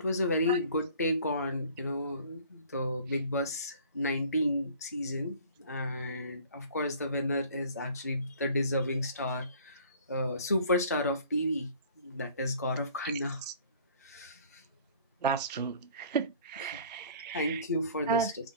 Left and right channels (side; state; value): both; inverted; correlation -0.50